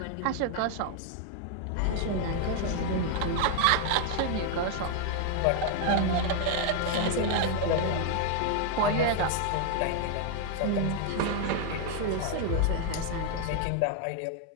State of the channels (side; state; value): both; different; correlation 0.00